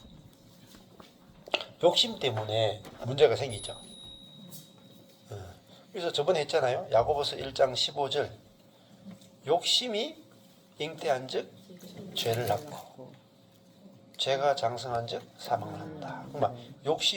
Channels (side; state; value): both; identical; correlation 1.00